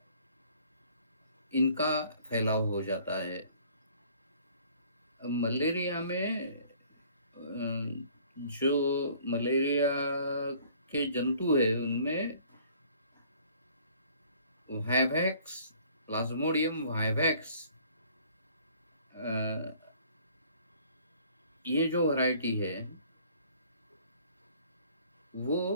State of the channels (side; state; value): both; inverted; correlation -0.56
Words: इनका फैलाव हो जाता है। मलेरिया में जो मलेरिया के जंतु है उनमें वाइवैक्स, प्लाज्मोडियम वाइवैक्स, ये जो वैरायटी है वो